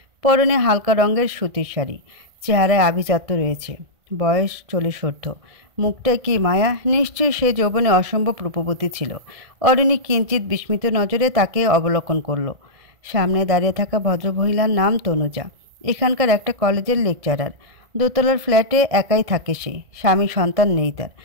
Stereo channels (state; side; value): late; left; 1.7 ms